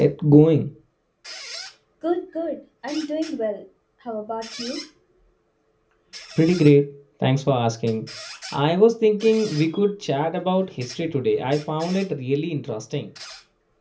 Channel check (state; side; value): identical; both; correlation 1.00